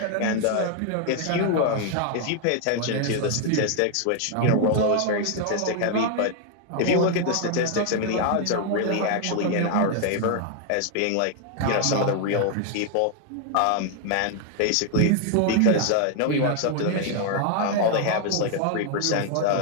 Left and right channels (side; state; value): both; different; correlation 0.00